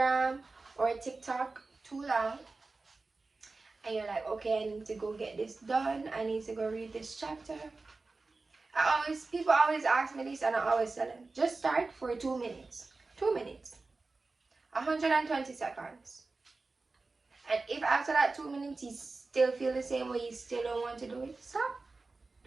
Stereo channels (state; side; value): quieter; left; 3.7 dB